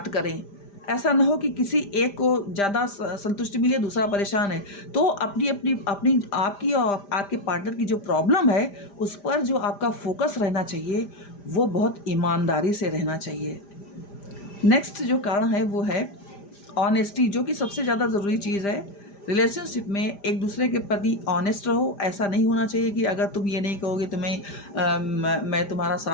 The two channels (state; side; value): late; right; 5.0 ms